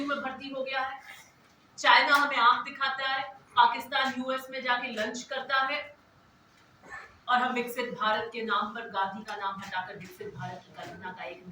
में भर्ती हो गया है। चाइना हमें आंख दिखाता है, पाकिस्तान यूएस में जाके लंच करता है, और हम विकसित भारत के नाम पर गांधी का नाम हटाकर विकसित भारत की कल्पना का एक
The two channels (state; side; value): identical; both; correlation 1.00